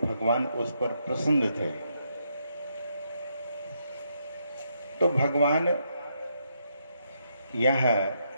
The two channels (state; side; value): inverted; both; correlation -0.78